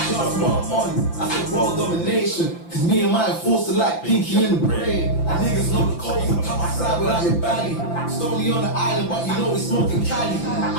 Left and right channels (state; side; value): late; right; 5.9 ms